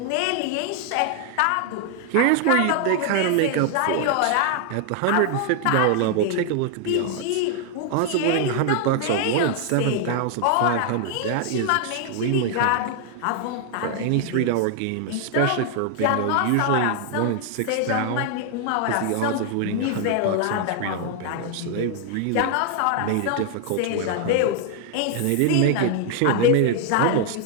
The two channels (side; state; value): both; different; correlation 0.00